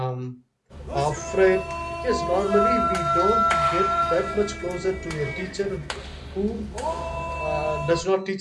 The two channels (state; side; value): identical; both; correlation 1.00